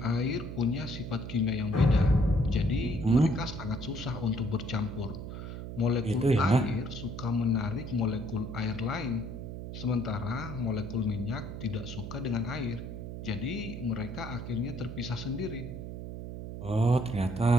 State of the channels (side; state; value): right; noise; hum, 8 dB below the sound